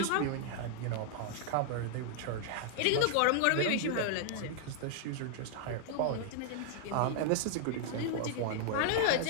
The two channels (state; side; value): different; both; correlation 0.00